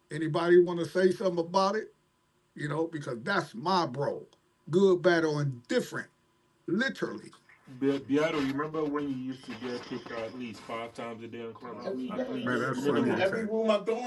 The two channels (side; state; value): both; identical; correlation 1.00